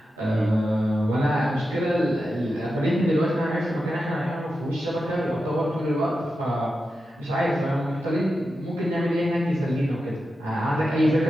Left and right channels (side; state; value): both; normal; correlation 0.90